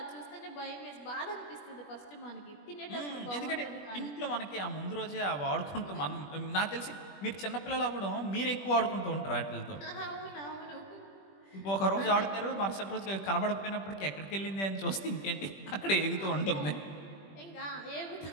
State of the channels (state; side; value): late; right; 20 ms